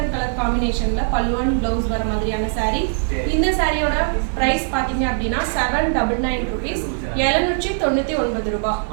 கலர் காம்பினேஷனில் பல்லு அண்ட் ப்ளவுஸ் வர மாதிரியான சாரீ. இந்த சாரியோட ப்ரைஸ் பார்த்தீங்க அப்படின்னா 799 rupees, 799 ரூபாய்.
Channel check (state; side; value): silent; left; digital silence